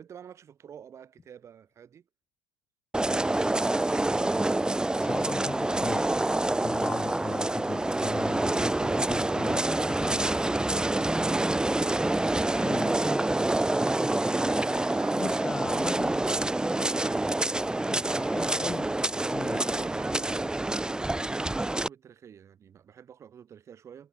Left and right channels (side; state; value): both; normal; correlation 0.87